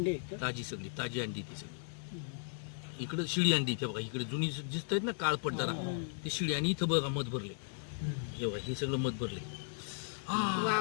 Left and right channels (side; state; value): right; silent; digital silence